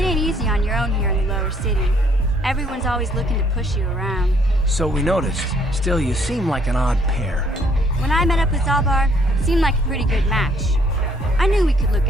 easy on your own here in the lower city. Everyone's always looking to push you around. So we noticed. Still, you seem like an odd pair. When I met up with Zalbar, it seemed like a pretty good match. I knew we could look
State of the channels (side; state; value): both; normal; correlation 0.65